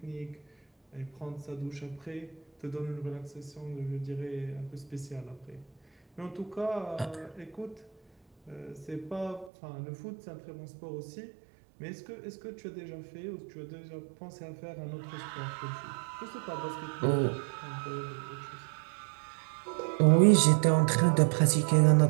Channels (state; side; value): drops out; left; at 9.5 s